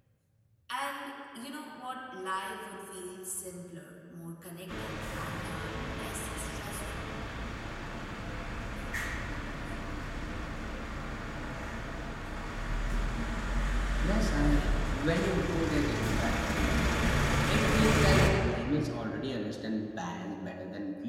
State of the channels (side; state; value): both; identical; correlation 1.00